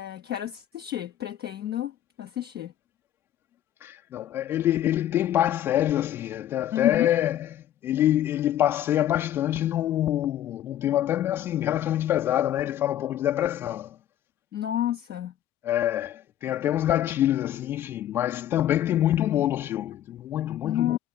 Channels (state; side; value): quieter; right; 11.9 dB